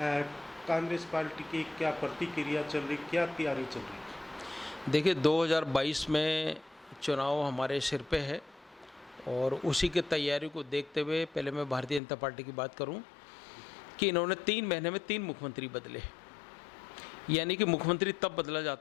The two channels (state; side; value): drops out; right; at 12.0 s